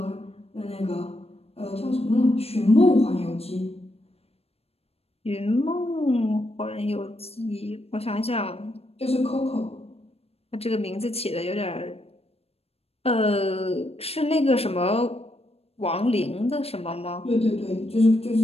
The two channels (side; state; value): right; late; 0.29 ms